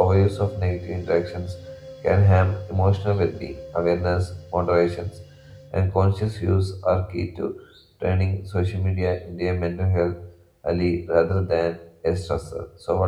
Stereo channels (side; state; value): both; identical; correlation 1.00